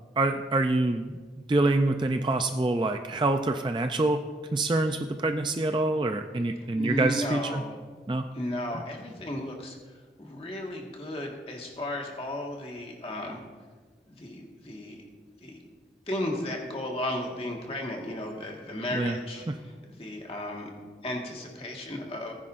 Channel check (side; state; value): both; normal; correlation 0.67